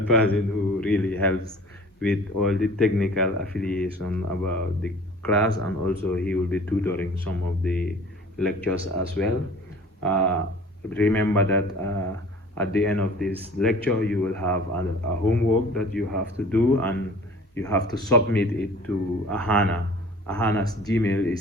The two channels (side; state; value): both; normal; correlation 0.46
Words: who really helps with all the technical affiliation about the class, and also he will be tutoring some of the lectures as well. Remember that at the end of this lecture, you will have a homework that you have to do, and you have to submit it to Ahana. Ahana's Gmail